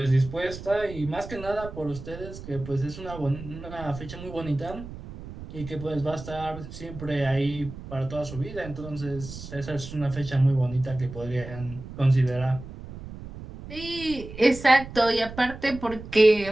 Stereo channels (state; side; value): noise; right; rumble, 12 dB below the sound